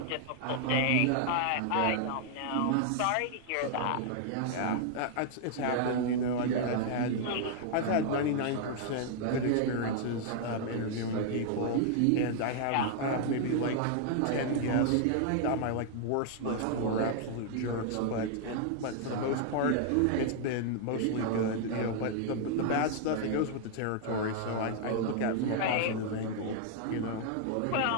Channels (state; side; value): different; both; correlation -0.01